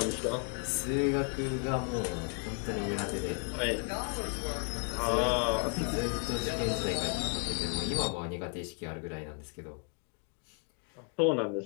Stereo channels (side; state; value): right; quieter; 39.3 dB